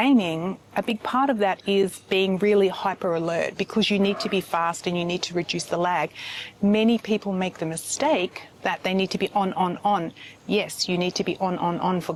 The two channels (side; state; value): both; identical; correlation 1.00